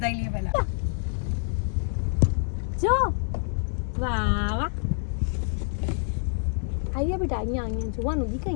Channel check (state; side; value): silent; right; 60 dB below the other